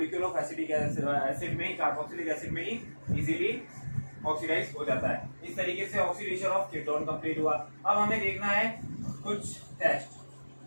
of acetic acid में ही, कार्बोक्सिलिक एसिड में ही इजीली ऑक्सीडाइज हो जाता है। इस तरीके से ऑक्सीडेशन ऑफ कीटोन कंप्लीट हुआ। अब हमें देखना है कुछ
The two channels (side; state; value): both; inverted; correlation -1.00